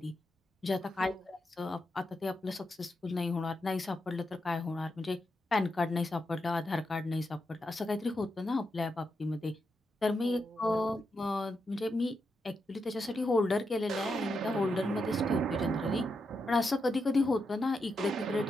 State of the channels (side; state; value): both; normal; correlation 0.85